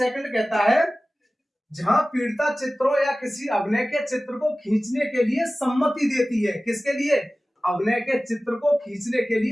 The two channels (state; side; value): normal; both; correlation 0.97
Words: कहता है, जहां पीड़िता चित्रों या किसी अभिनय के चित्र को खींचने के लिए सम्मति देती है। किसके लिए, अभिनय के चित्र को खींचने के